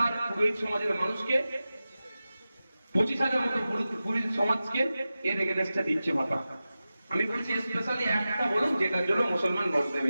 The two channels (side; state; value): both; inverted; correlation -0.94